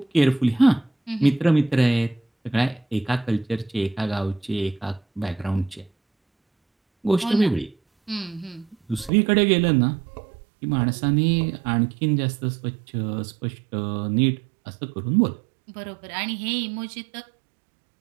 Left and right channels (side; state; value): left; drops out; at 9.1 s